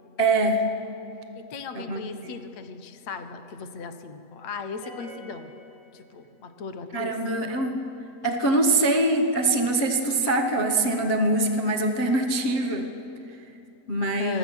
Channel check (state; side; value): late; right; 8.1 ms